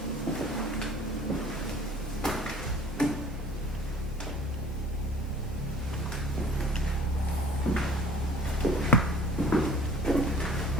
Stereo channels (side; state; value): both; normal; correlation 0.50